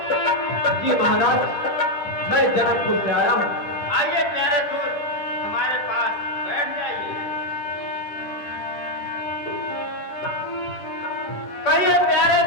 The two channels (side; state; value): right; late; 10 ms